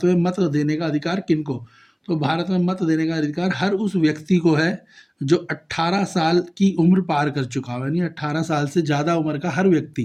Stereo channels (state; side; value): identical; both; correlation 1.00